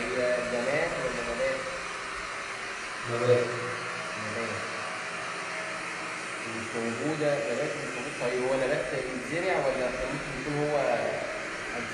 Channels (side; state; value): both; identical; correlation 1.00